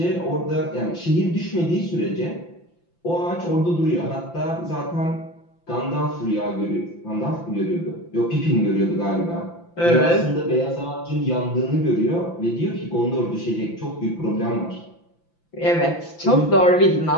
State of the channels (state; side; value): late; right; 5.9 ms